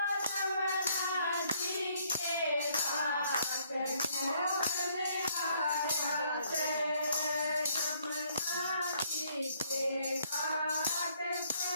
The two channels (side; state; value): both; inverted; correlation -0.66